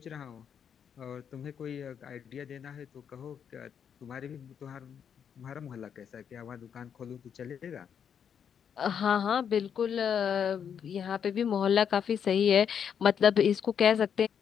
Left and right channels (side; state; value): right; quieter; 7.9 dB